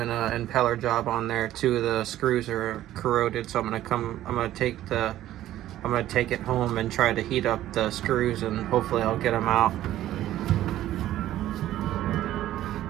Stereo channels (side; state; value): left; quieter; 13.5 dB